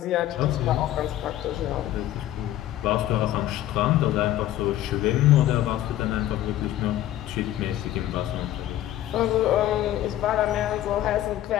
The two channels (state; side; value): quieter; right; 13.3 dB